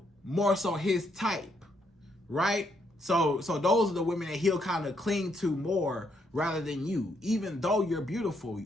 more so his type, right? So those are the women that he'll kind of cling to more rather than you. Even though you're beautiful,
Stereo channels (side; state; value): both; normal; correlation 0.75